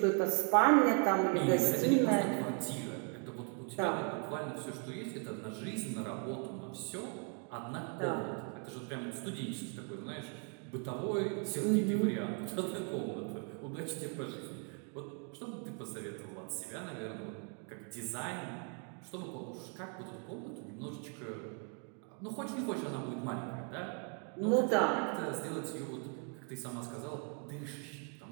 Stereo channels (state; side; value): quieter; left; 39.4 dB